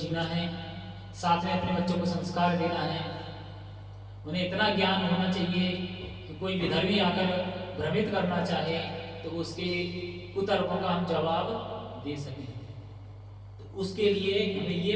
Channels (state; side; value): identical; both; correlation 1.00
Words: है, साथ में अपने बच्चों को संस्कार देना है। उन्हें इतना ज्ञान होना चाहिए कि कोई विधर्मी आकर भ्रमित करना चाहे तो उसके कुतर्कों का हम जवाब दे सकें। तो उसके लिए हमें